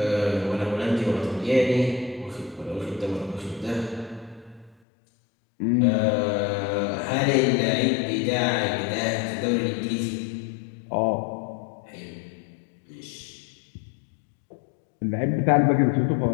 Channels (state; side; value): drops out; right; at 4.8 s